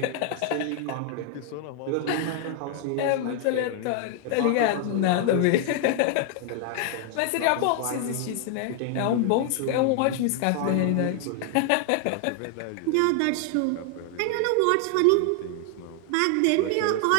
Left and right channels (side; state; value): both; different; correlation 0.00